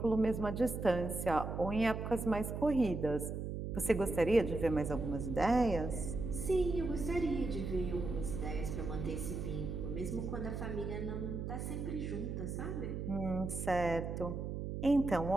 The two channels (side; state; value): right; noise; hum, 4 dB below the sound